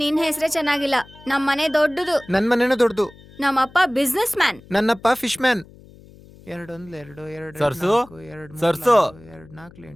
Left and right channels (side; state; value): left; noise; hum, 23 dB below the sound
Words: ಹೆಸರೇ ಚೆನ್ನಾಗಿಲ್ಲ. ನಮ್ಮನೆ ದೊಡ್ಡದು. ನನ್ ಮನೇನೂ ದೊಡ್ಡದು. ನಮ್ಮಪ್ಪ ಬಿಸ್ನೆಸ್ ಮ್ಯಾನ್. ನನ್ನಪ್ಪ ಫಿಶ್ ಮ್ಯಾನ್. 2 1 2 2 ಸರ್ಸು 4 2 ಸರ್ಸು 2 4